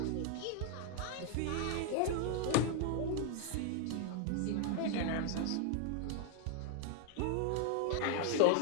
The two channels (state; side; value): different; both; correlation 0.00